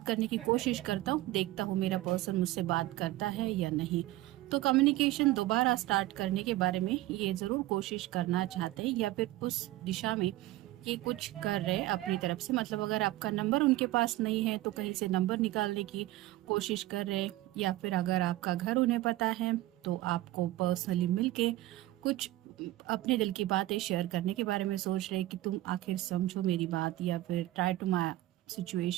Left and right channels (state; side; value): quieter; left; 16.7 dB